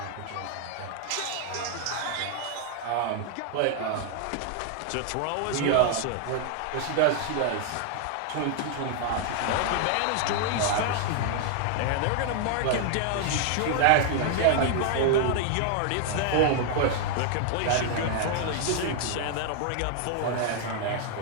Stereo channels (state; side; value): different; both; correlation 0.00